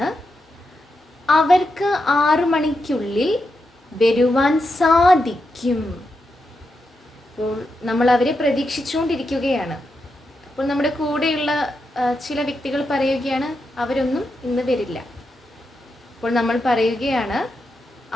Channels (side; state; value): both; normal; correlation 0.86